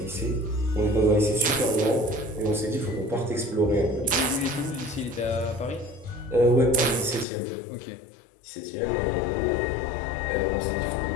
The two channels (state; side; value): drops out; right; at 7.2 s